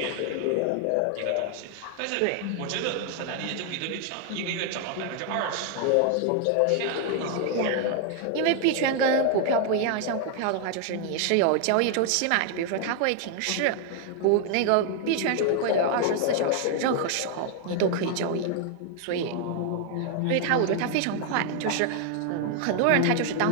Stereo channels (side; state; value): both; different; correlation 0.00